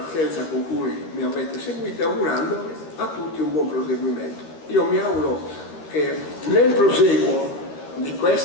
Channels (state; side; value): late; right; 13 ms